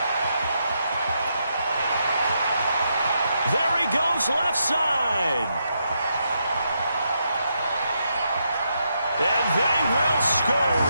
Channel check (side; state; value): both; inverted; correlation -0.81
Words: There he goes, left side. And they will score